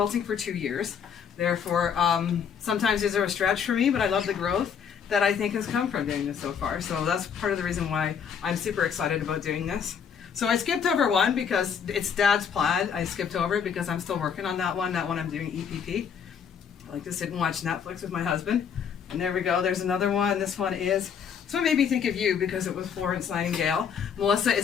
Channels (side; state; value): right; quieter; 7.3 dB